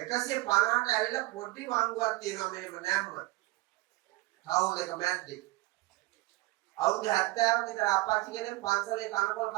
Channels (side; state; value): left; quieter; 20.7 dB